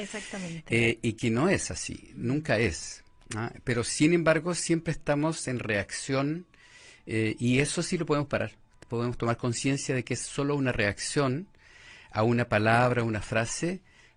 Y que no es así, nunca es. Pero sin embargo siempre estamos en reacción, y eso sí lo podemos parar. Podemos tomar conciencia de que es solo una reacción a una palabra, una frase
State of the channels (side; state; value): both; identical; correlation 1.00